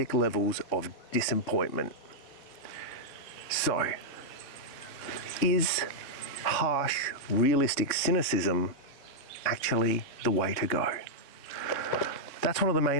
levels of disappointment. So, is harsh, realistic cynicism actually the way to go? That's one of the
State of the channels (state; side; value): late; right; 3.7 ms